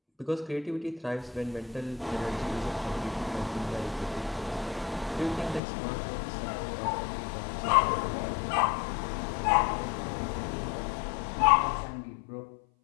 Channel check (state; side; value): drops out; right; at 5.6 s